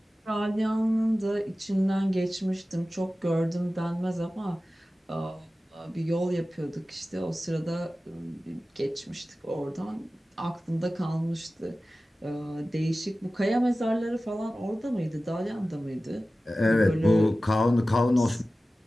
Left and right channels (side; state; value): both; normal; correlation 0.96